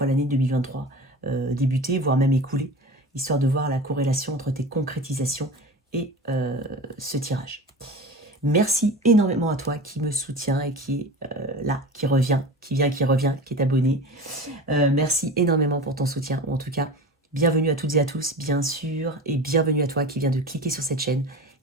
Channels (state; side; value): normal; both; correlation 0.32